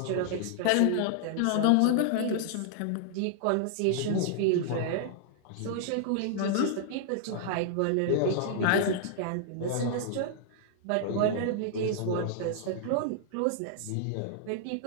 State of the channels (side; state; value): both; different; correlation -0.01